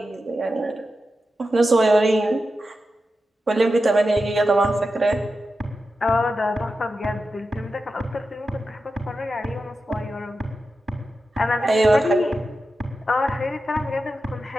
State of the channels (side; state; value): both; normal; correlation 0.91